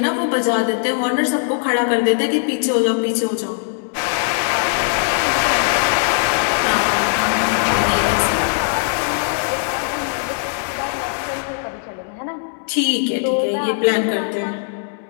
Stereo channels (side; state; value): right; silent; digital silence